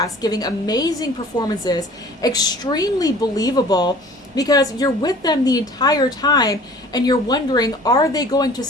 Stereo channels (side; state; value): both; normal; correlation 0.48